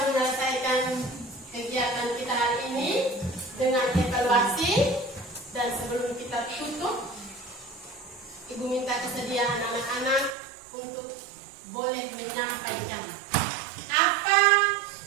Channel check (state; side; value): drops out; left; at 10.4 s